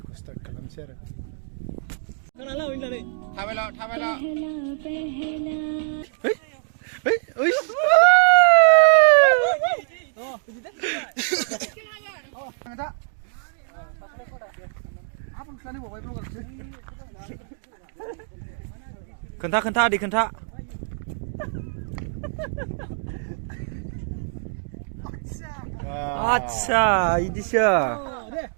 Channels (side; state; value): left; silent; digital silence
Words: स्टार्ट खालामसै आरो खोनाला होननानै थाबायला ओइ ओइ खोन्था आदै खोन्था आच्छा इदिसो